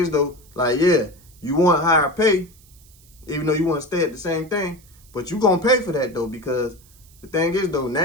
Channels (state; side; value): noise; right; hiss, 27 dB below the sound